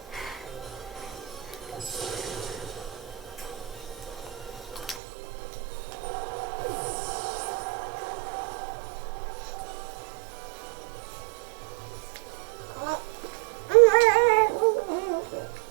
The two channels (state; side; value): drops out; left; at 5.0 s